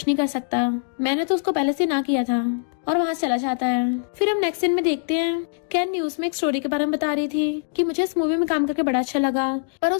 नहीं कर सकता, मैंने तो उसको पहले से ना किया था, और वहाँ चला जाता है। फिर हम नेक्स्ट सीन में देखते हैं कैन न्यूज में एक स्टोरी के बारे में बता रही थी कि मुझे इस मूवी में काम करके बड़ा अच्छा लगा, पर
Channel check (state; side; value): silent; right; digital silence